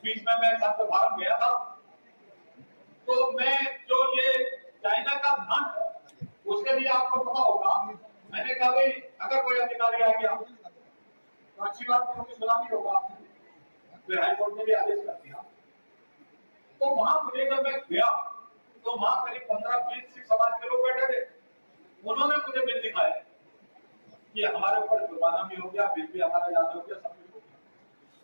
बीच में मैं संत भारत गया था, तो मैं जो ये चाइना का धन, उसके लिए आपको पता होगा, मैंने कहा भाई अगर कोई अधिकारी आ गया तो अच्छी बात क्योंकि सलामी होगा, फिर हाईकोर्ट ने भी आदेश कर दिया। तो वहां मुझे जब मैं गया तो वहां करीब 15-20 सिख समाज के लोग बैठे थे, उन्होंने मुझे बिल दिखाया कि हमारे ऊपर जुर्माना भी हो गया, बिल भी हमारा याद हो गया, सब कुछ हो गया।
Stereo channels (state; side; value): inverted; both; correlation -1.00